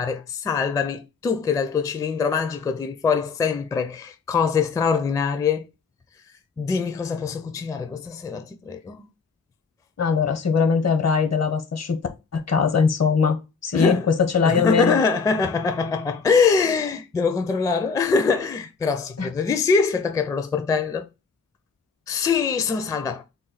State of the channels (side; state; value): right; quieter; 5.1 dB